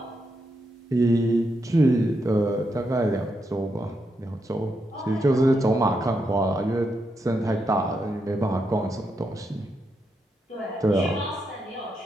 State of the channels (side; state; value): both; normal; correlation 0.82